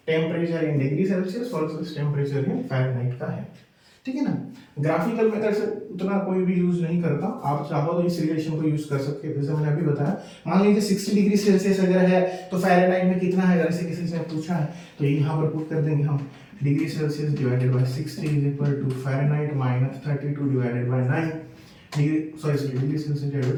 temperature in degree Celsius versus temperature in Fahrenheit का है। ठीक है ना। ग्राफिकल मेथड से उतना कोई भी यूज नहीं करता, आप चाहो तो इस रिलेशन को यूज कर सकते हैं। जैसे मैंने अभी बताया, मान लीजिए 60 डिग्री सेल्सियस अगर है तो फ़ारेनहाइट में कितना है, अगर किसी से पूछा है तो यहाँ पर पुट कर देंगे हम, degree Celsius divided by 60 is equal to Fahrenheit minus 32 divided by 9 degree Celsius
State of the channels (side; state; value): both; identical; correlation 1.00